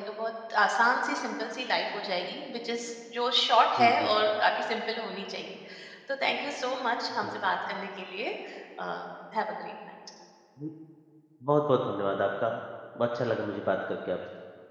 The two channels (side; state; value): both; identical; correlation 1.00